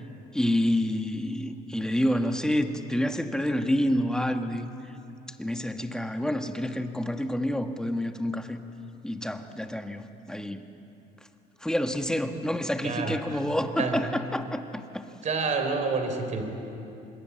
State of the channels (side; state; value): both; normal; correlation 0.82